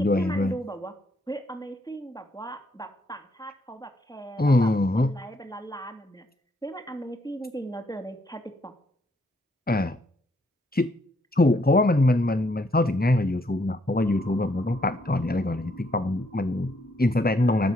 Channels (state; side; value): normal; both; correlation 0.71